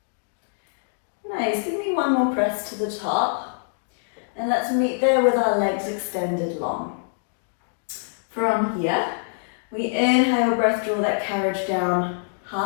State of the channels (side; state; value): right; silent; digital silence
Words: Nice, give me one more press to the top. And let's meet there with our legs extended long. From here, we inhale, breath, draw that carriage down